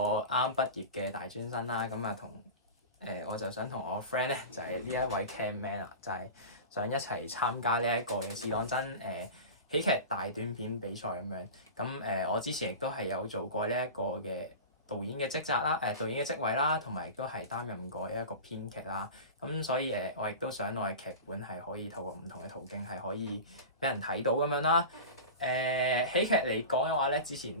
畢業嘅大專生啦。咁啊，我就想同我 friend 咧，就係呢一位 camman 啊，就係想一齊參加呢一個嘅試當真喜劇大短片比賽咁樣。咁我之前亦都係有做過呢一個嘅導演嘅職責啦，導演嘅職位啦，同埋亦都係擔任過一個編劇啦。咁所以我亦都想我嘅劇本係可以透過唔同嘅途徑係可以俾人睇到咁樣啦。喜劇嚟講嘅話咧，之前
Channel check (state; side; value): inverted; both; correlation -0.30